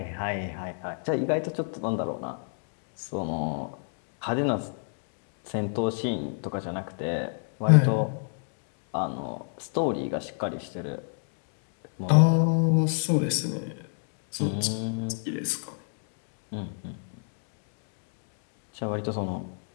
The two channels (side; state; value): right; silent; digital silence